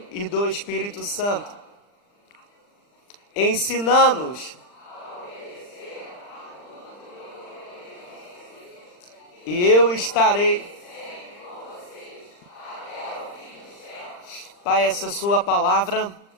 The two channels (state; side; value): late; right; 40 ms